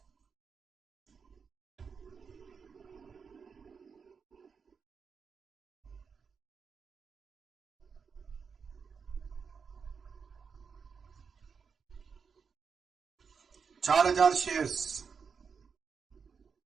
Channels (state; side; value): quieter; left; 5.9 dB